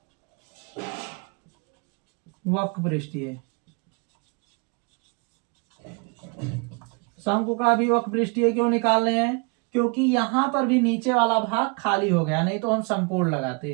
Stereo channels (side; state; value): left; quieter; 32.4 dB